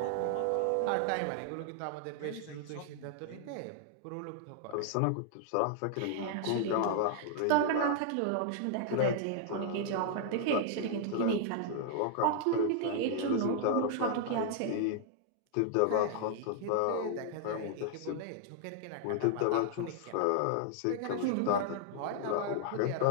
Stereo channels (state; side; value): different; both; correlation -0.01